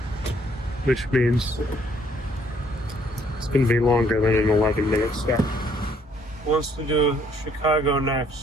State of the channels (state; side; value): normal; both; correlation 0.65